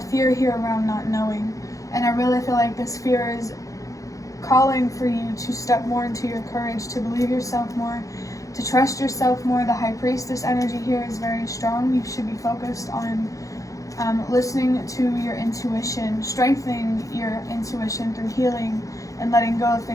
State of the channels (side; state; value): right; late; 0.16 ms